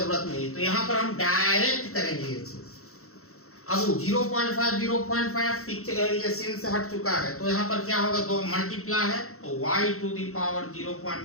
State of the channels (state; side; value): late; right; 0.63 ms